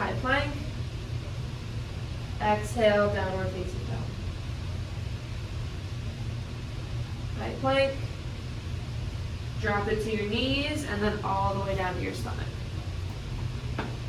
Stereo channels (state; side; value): identical; both; correlation 1.00